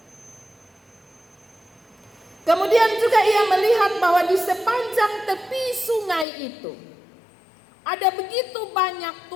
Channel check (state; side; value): drops out; right; at 6.2 s